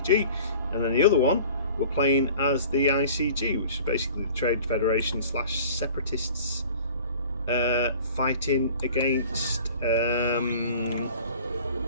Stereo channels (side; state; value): both; inverted; correlation -0.45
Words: and then the other one we're playing as the ICG, which is basically the Trade Federation / separatists fighting against the